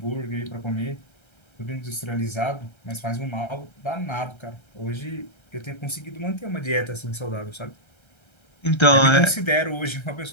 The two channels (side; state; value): right; late; 1.3 ms